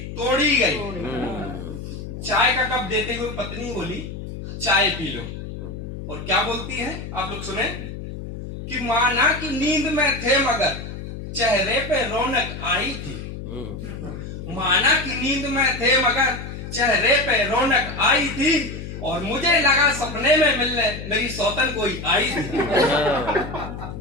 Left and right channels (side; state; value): left; noise; hum, 9 dB below the sound